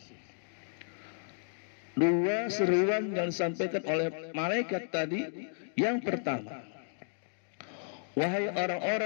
Dua seruan yang disampaikan oleh malaikat tadi. Yang pertama, wahai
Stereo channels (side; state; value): right; silent; digital silence